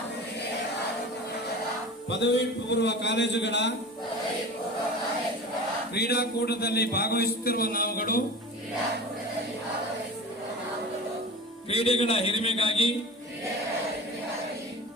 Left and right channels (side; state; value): both; normal; correlation 0.34